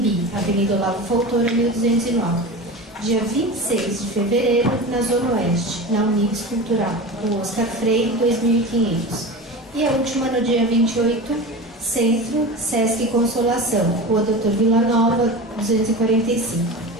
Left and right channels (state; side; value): normal; both; correlation 0.29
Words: Avenida Olavo Fontoura, 1209. Dia 26 de fevereiro, na Zona Oeste, na Unibis Cultural, Rua Oscar Freire, 2500. E a última no dia 28, Centro, Sesc Consolação, Rua Doutor Vila Nova, 245.